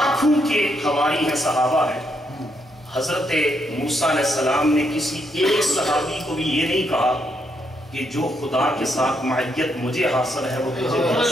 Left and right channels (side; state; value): both; normal; correlation 0.77